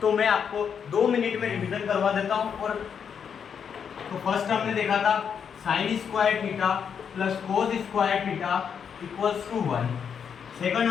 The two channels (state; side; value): quieter; right; 7.3 dB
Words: तो मैं आपको 2 मिनट में रिवीजन करवा देता हूँ। और तो फर्स्ट हमने देखा था sine square theta plus cos square theta equals to 1। Second